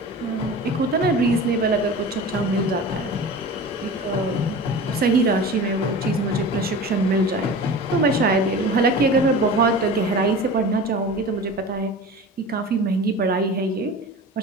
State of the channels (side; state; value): both; normal; correlation 0.35